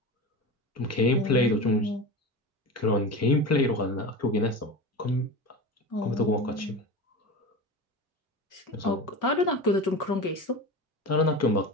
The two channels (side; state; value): both; normal; correlation 0.27